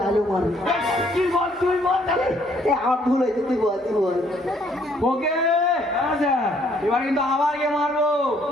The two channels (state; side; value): normal; both; correlation 0.65